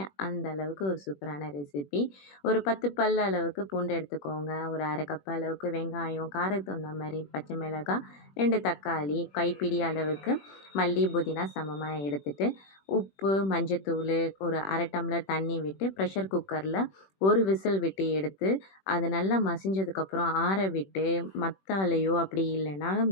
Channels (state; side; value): late; right; 21 ms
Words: அந்த அளவுக்கு ஒரு சூப்பரான ரெசிபி. ஒரு 10 பல் அளவுக்கு பூண்டு எடுத்துக்கோங்க. ஒரு 1/2 கப் அளவுக்கு வெங்காயம், காரத்துக்கு தகுந்த மாரி பச்சை மிளகாய், 2 தக்காளி, கைப்பிடி அளவுக்கு மல்லி, புதினா சமமா எடுத்துட்டு, உப்பு, மஞ்சத்தூளு, ஒரு 1/2 டம்ளர் தண்ணி விட்டு ப்ரெஷர் குக்கரில ஒரு விசில் விட்டு எடுத்து அது நல்லா மசிஞ்சதுக்கப்புறம் ஆற விட்டு மத்தாலையோ அப்படி இல்லைன்னா